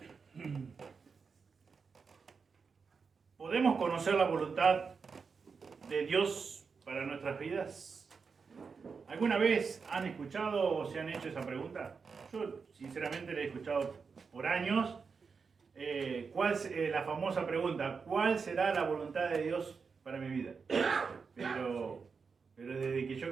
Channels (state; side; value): quieter; left; 5.3 dB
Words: ¿Podemos conocer la voluntad de Dios para nuestras vidas? ¿Alguna vez han escuchado o se han hecho esa pregunta? Yo sinceramente la he escuchado por años. La famosa pregunta, ¿cuál será la voluntad de Dios para mi vida? Pero desde que yo